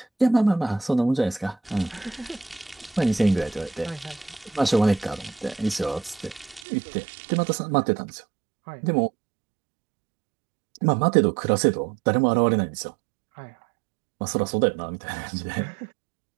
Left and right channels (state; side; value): drops out; left; at 6.6 s